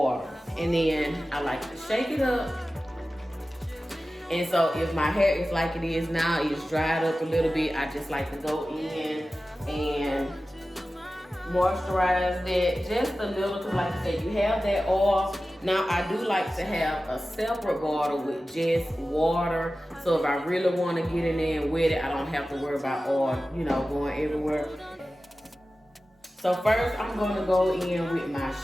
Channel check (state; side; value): normal; both; correlation 0.95